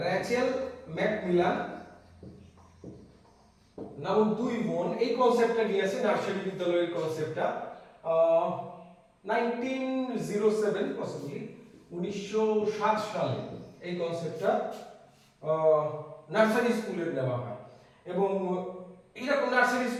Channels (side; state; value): both; identical; correlation 1.00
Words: র্যাচেল ম্যাকমিলান নামক 2 বোন এই কনসেপ্টটা নিয়ে আসে, নার্সারি বিদ্যালয়ের কনসেপ্টটা 1907 পসিবলি 1907 সালে এই কনসেপ্টটা নার্সারি স্কুলের নেওয়া হয়। এবং এইরকম নার্সারি